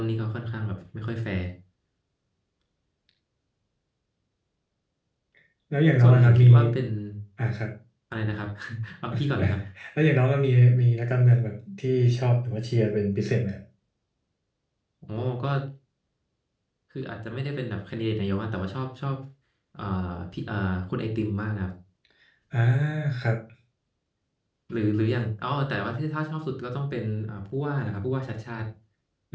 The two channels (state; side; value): identical; both; correlation 1.00